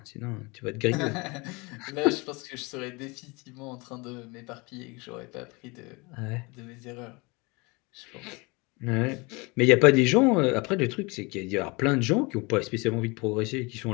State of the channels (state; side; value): quieter; right; 27.0 dB